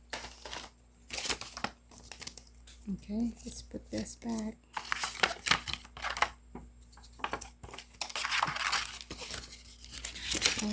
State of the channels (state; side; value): identical; both; correlation 1.00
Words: Okay, let's put this back.